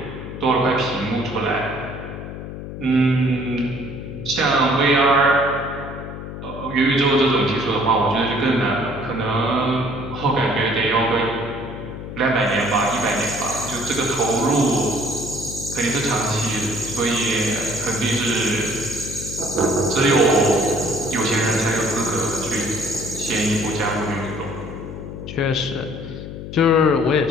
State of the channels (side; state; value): left; noise; hum, 9 dB below the sound